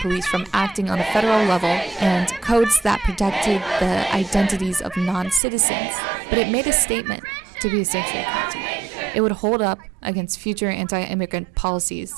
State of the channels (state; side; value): drops out; left; at 5.4 s